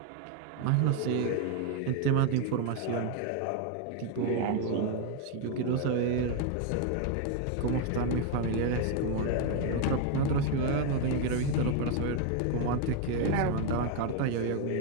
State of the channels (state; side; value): different; both; correlation 0.01